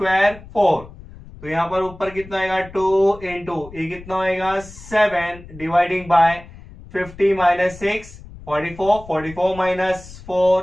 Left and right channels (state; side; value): noise; left; rumble, 18 dB below the sound